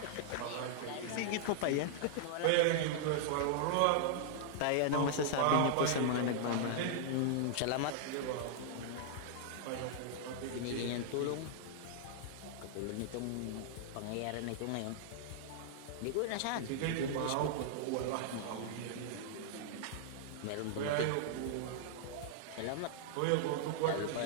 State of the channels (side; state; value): both; different; correlation -0.01